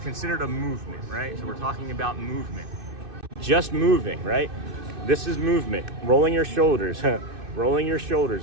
considered a movement, right? So we're talking about movement. Just moving, right? This is movement. Rolling your shoulders, rolling your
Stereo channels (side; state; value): left; late; 2.6 ms